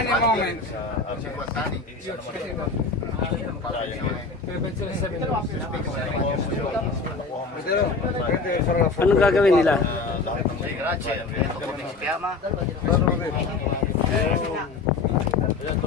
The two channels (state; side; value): quieter; right; 4.1 dB